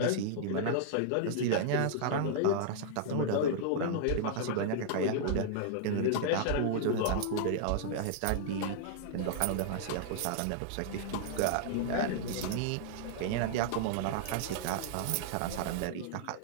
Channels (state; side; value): different; both; correlation -0.01